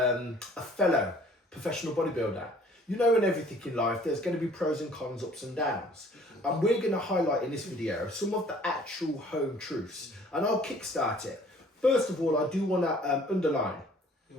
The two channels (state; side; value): normal; both; correlation 0.55